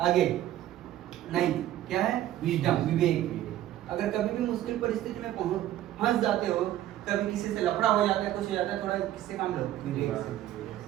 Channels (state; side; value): quieter; left; 13.2 dB